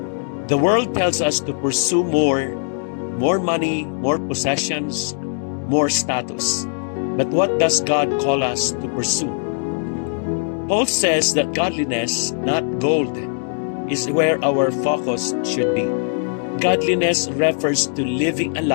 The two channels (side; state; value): right; silent; 65 dB below the other